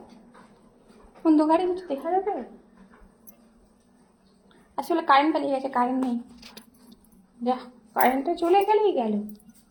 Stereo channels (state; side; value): identical; both; correlation 1.00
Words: অন্ধকারে কিছু দেখা যাবে। আসলে কারেন্ট পালিয়ে গেছে, কারেন্ট নেই। যা, কারেন্টটা চলে গেলেই গেল।